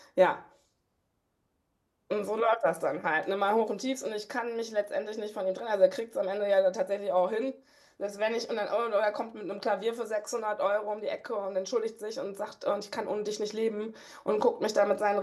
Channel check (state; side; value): identical; both; correlation 1.00